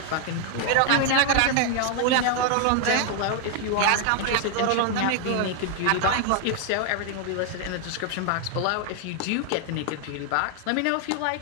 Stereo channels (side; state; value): both; different; correlation 0.00